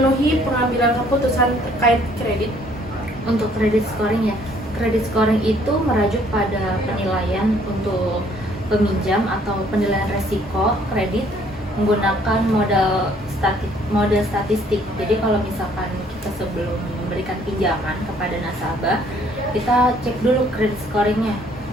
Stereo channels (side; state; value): both; normal; correlation 0.61